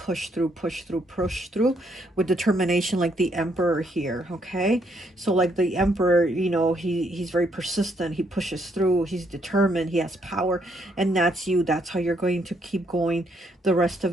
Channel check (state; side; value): normal; both; correlation 0.72